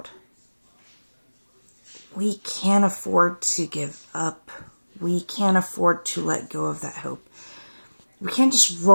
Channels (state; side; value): inverted; both; correlation -1.00